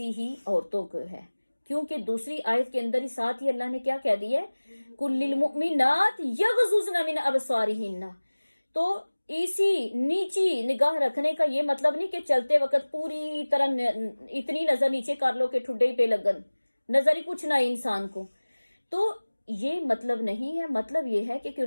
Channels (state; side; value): inverted; both; correlation -1.00